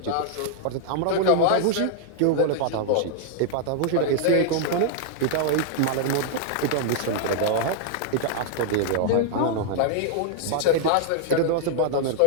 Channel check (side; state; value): both; different; correlation -0.01